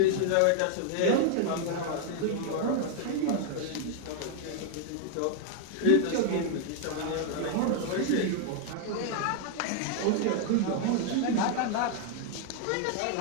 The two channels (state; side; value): different; both; correlation 0.00